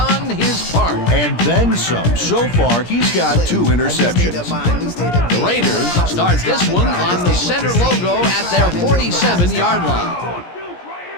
his part. And then some. So far, he's got 2 interceptions. The Raiders start this one on the center logo at their 47-yard line.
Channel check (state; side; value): late; right; 17 ms